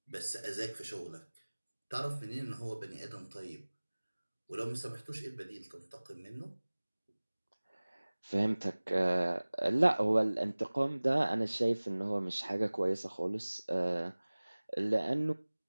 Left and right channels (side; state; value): both; inverted; correlation -1.00